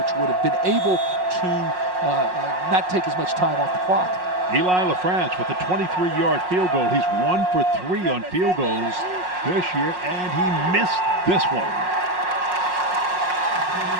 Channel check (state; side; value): late; left; 5.5 ms